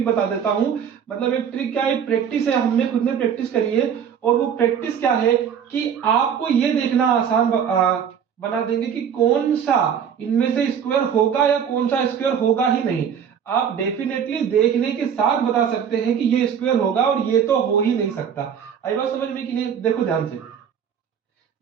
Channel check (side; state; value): left; quieter; 7.9 dB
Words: बता देता हूं। मतलब एक ट्रिक क्या है, प्रैक्टिस है, हमने खुद ने प्रैक्टिस करी है। और वो प्रैक्टिस क्या है कि आपको ये देखना आसान बना देंगे कि कौन सा इनमें से स्क्वायर होगा या कौन सा स्क्वायर होगा ही नहीं। आप डेफिनेटली देखने के साथ बता सकते हैं कि ये स्क्वायर होगा और ये तो हो ही नहीं सकता। आई बात समझ में कि नहीं। देखो ध्यान से,